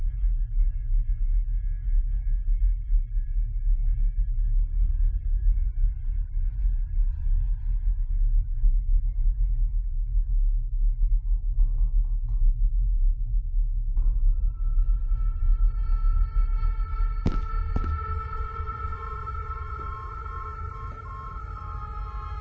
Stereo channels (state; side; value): identical; both; correlation 1.00